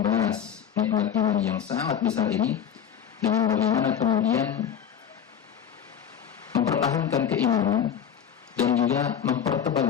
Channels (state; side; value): quieter; right; 8.7 dB